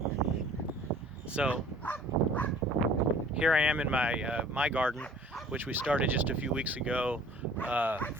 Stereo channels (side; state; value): both; normal; correlation 0.50